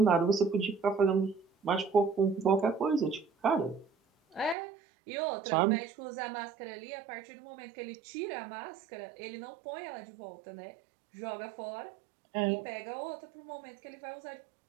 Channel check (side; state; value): left; drops out; at 4.5 s